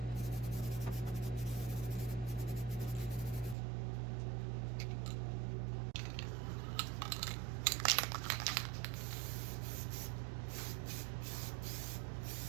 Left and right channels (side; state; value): left; drops out; at 3.6 s